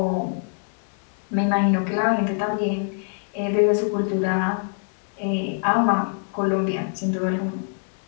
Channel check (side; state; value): right; silent; 62 dB below the other